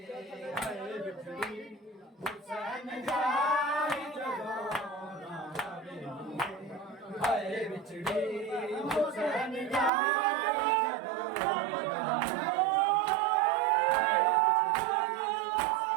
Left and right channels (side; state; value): left; drops out; at 9.9 s